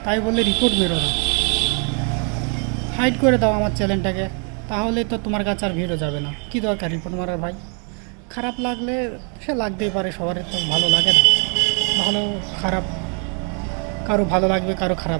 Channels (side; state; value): left; quieter; 39.1 dB